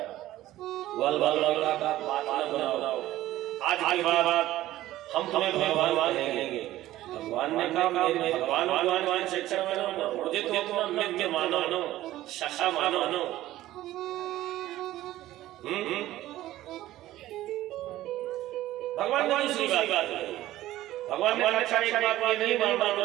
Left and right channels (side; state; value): left; quieter; 15.0 dB